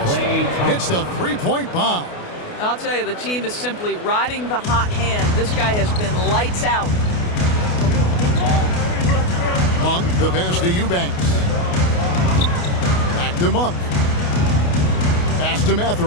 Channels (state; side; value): late; right; 28 ms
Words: Hits the three-point bomb. I'll tell you, the team is simply riding the hot hand. This guy has been lights out. Monk, the pass to Eubanks. Back to Monk. Pass to